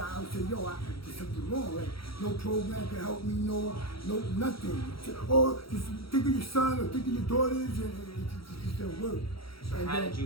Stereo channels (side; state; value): right; late; 0.75 ms